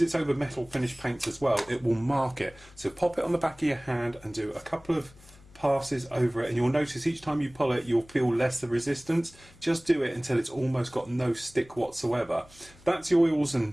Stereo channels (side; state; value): left; noise; hum, 24 dB below the sound